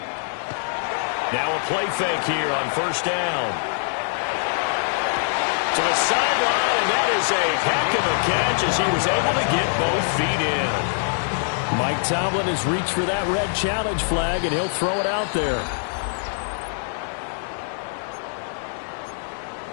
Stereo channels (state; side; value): silent; right; digital silence